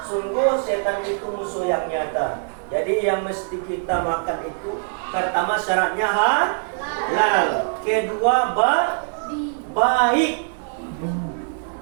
Sungguh setan itu musuh yang nyata. Jadi yang mesti kita makan itu pertama syaratnya halal. Kedua baik.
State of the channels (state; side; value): silent; left; digital silence